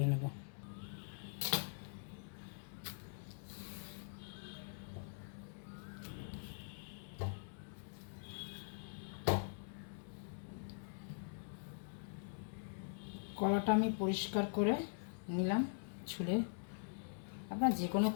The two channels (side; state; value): right; silent; digital silence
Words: নেব। কলাটা আমি পরিষ্কার করে নিলাম ছুলে। আপনার যে কোনো